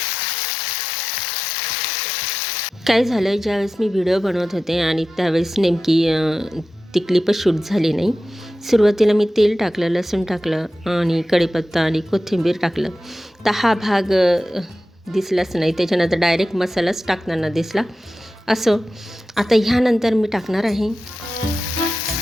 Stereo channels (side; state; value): both; normal; correlation 0.93